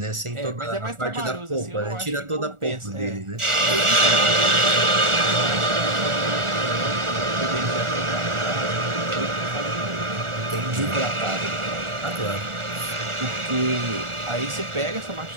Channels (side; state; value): left; late; 1.4 ms